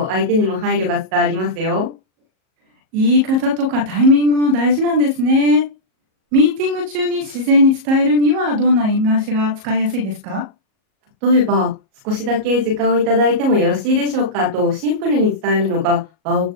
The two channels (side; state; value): left; late; 38 ms